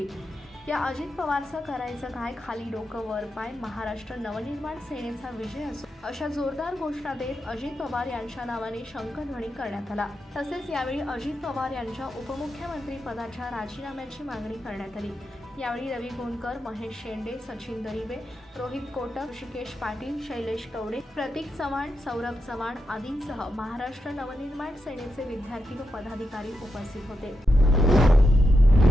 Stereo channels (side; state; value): both; normal; correlation 0.86